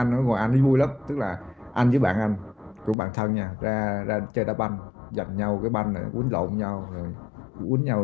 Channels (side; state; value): right; drops out; at 3.0 s